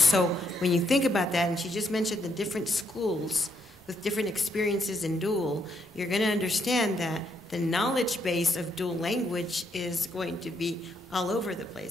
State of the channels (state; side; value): normal; both; correlation 0.75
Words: when you think about that, and she just mentioned the different schools with different experiences in dual, you're going to understand that the knowledge base of dual language is going to be all over the